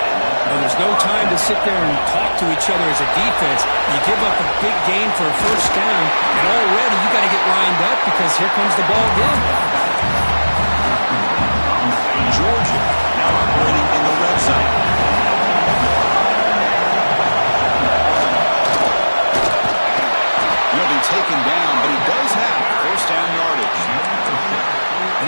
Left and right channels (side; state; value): both; inverted; correlation -1.00